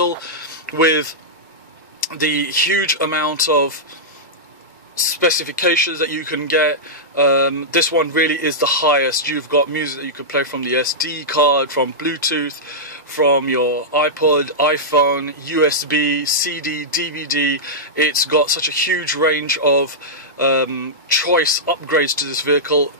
with the huge amount of specifications that you can get, this one really is the highest. You've got music that you can play from the SD card, from Bluetooth, from your iPod, iPhone, USB, CD, DVD. It's got such a huge range of choice upgrades to this vehicle,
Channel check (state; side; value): normal; both; correlation -0.10